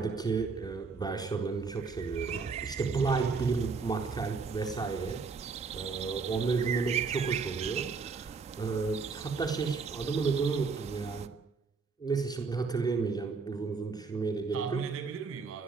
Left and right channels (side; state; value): left; quieter; 4.8 dB